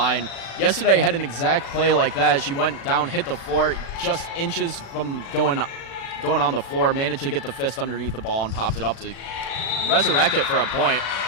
Yesterday had an exact play like that. She went down, hit the floor, just inches from going on the floor, managed to get the fist underneath the ball and popped it up to resurrect it for a point.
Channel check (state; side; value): late; right; 36 ms